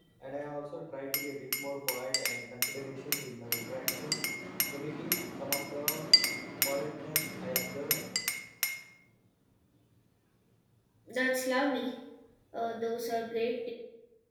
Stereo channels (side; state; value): both; identical; correlation 1.00